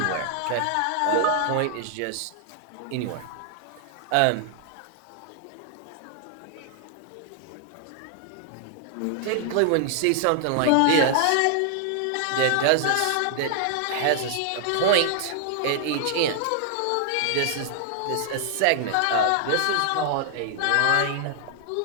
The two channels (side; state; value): both; different; correlation 0.00